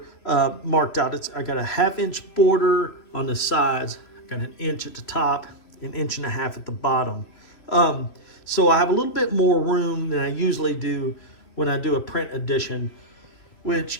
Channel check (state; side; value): late; right; 3.0 ms